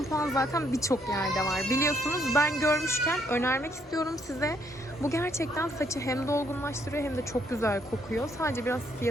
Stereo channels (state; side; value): normal; both; correlation 0.71